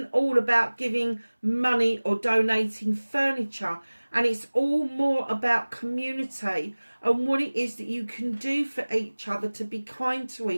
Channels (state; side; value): inverted; both; correlation -1.00